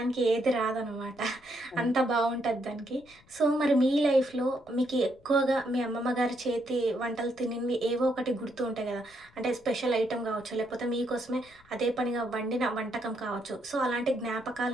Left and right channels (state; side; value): noise; left; rumble, 28 dB below the sound